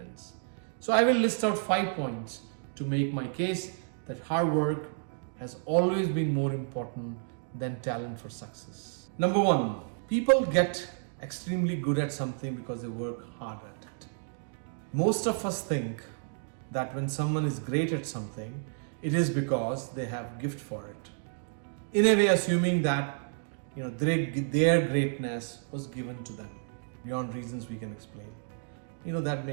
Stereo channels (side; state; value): left; silent; digital silence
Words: So I will list out 5 points to make my case that hard work has always been more important than talent for success. Number 1, people get extremely good at something because they work hard at it. Most of us think that when someone is great at something, it is because they have gift for it. In a way, assuming that their greatness was given to them beyond reasons we can explain. That